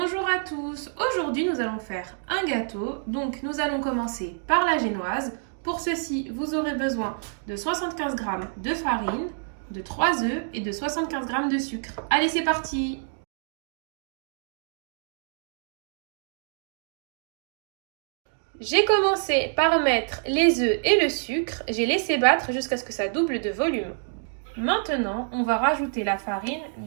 à tous, aujourd'hui nous allons faire un gâteau, donc nous allons commencer par la génoise. Pour ceci, vous aurez besoin de 75 g de farine, de 3 œufs et de 75 g de sucre. Allez, c'est parti! J'ai commencé par mettre les œufs et le sucre, j'ai laissé battre jusqu'à ce que ça double de volume. Maintenant, on va rajouter la farine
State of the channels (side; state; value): left; silent; 60 dB below the other